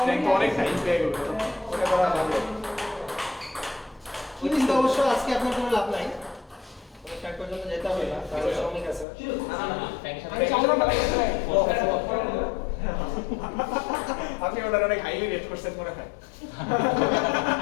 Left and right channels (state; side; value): drops out; right; at 9.1 s